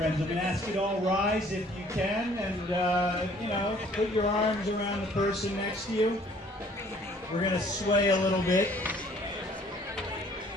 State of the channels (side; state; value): both; normal; correlation 0.57